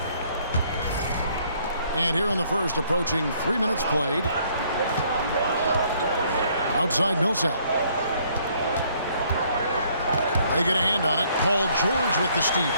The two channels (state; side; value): inverted; both; correlation -0.65